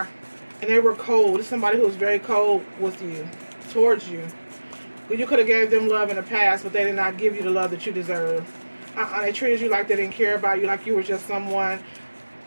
And they were cold. This is somebody who was very cold with you, towards you. You could have gave them love in the past, but they did not give you the love that you deserve. They treated you like they didn't care about you, like you were just one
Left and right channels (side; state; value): both; inverted; correlation -1.00